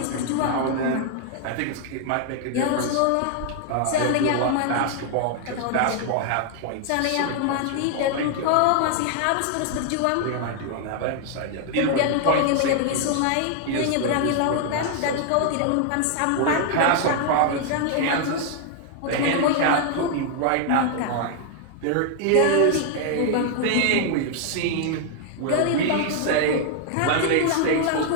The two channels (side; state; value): both; different; correlation 0.00